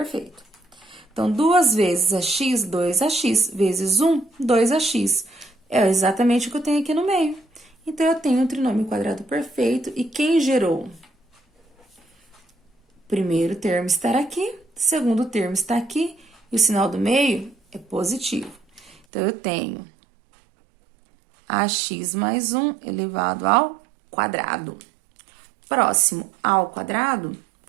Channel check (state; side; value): drops out; left; at 19.0 s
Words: Então, 2 vezes ax, 2ax, vezes 1, 2ax. É exatamente o que eu tenho aqui no meio. Então, eu tenho um trinômio quadrado perfeito. E quem gerou? Primeiro termo está aqui, segundo termo está aqui, e o sinal do meio é positivo. Então, eu tenho ax mais 1 elevado ao quadrado. Próximo ao quadrado